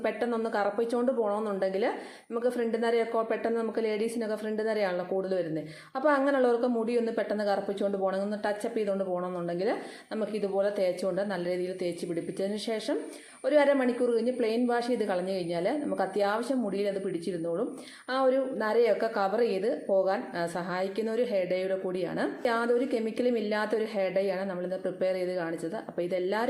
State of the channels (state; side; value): identical; both; correlation 1.00